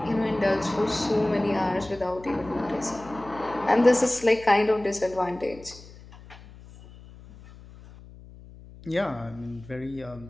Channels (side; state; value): left; noise; hum, 19 dB below the sound